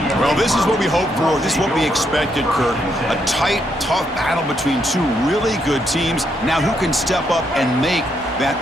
Well, this is what we hoped for. This is what we expected, Kirk. A tight, tough battle between two really good teams. Now, who can step up and make that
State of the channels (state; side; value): normal; both; correlation 0.77